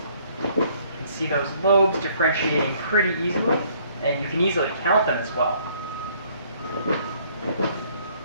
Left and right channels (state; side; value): inverted; both; correlation -0.62